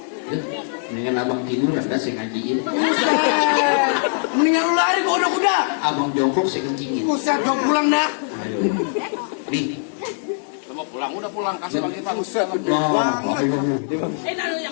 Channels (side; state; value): right; silent; 65 dB below the other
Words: Mendingan abang tiduran dah saya ngajiin. Buset. Mendingan lu lari ke kuda-kuda. Abang jongkok saya kencingin. Buset, gue pulang dah. Ayo. Nih. Lu mau pulang, udah pulang. Kasih lagi, Bang. Buset, gede Oh, banget. oh.